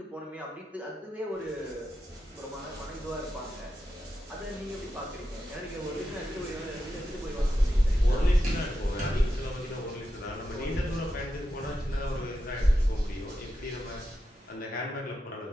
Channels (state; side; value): normal; both; correlation 0.88